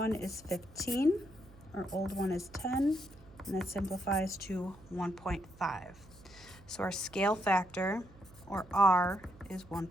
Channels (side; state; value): right; noise; hum, 23 dB below the sound